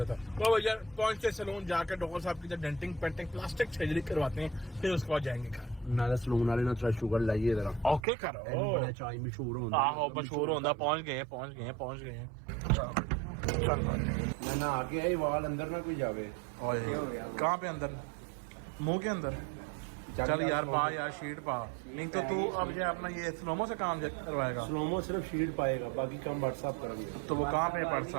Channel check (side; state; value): left; drops out; at 8.1 s